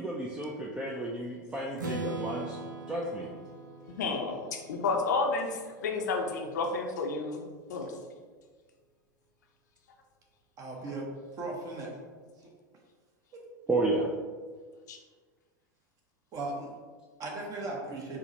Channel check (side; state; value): both; normal; correlation 0.20